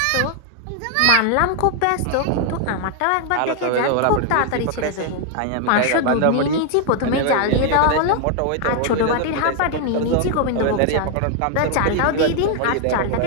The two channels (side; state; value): both; different; correlation 0.00